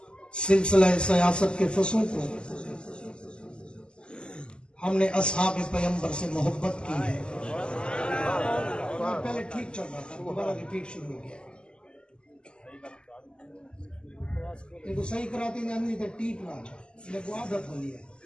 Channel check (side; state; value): right; late; 0.049 ms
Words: سلسلہ سیاست کے فصوں کو ہم نے اصحاب پیغمبر سے محبت کی ہے۔ پہلے ٹھیک چل رہا تھا، دوبارہ ریپیٹ شروع ہو گیا۔ لیکن صحیح کراتی نہیں تھا، ٹھیک نہ آجا لیکن عادت ہو لیا